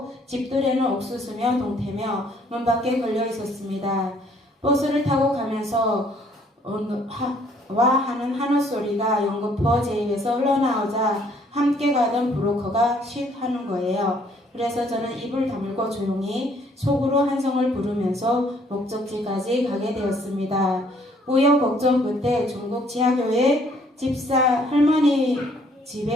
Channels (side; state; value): both; normal; correlation 0.63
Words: 집들에는 옥수수며 동태며 문 밖에 걸려 있었습니다. 버스를 타고 가면서 와 하는 한어 소리가 연거푸 제 입에서 흘러나오자 함께 가던 브로커가 쉿 하는 거예요. 그래서 저는 입을 다물고 조용히 속으로 한성을 부르면서 목적지까지 가게 되었습니다. 우여곡절 끝에 중국 지하교회 집사 할머니